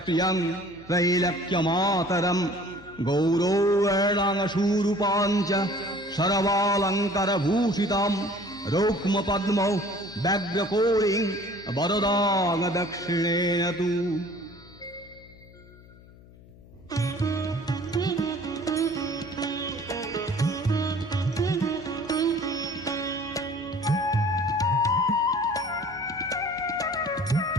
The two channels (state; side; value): noise; left; hum, 23 dB below the sound